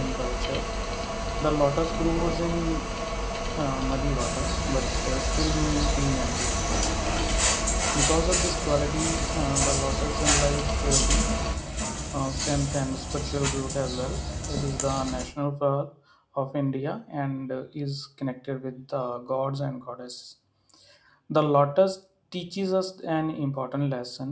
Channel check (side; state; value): both; identical; correlation 1.00